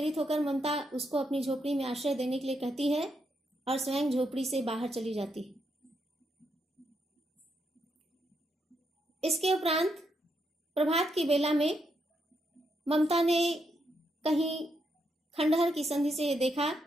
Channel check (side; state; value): both; normal; correlation 0.80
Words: होकर ममता उसको अपनी झोपड़ी में आश्रय देने के लिए कहती है और स्वयं झोपड़ी से बाहर चली जाती है। इसके उपरांत प्रभात की बेला में ममता ने कहीं खंडहर की संधि से देखा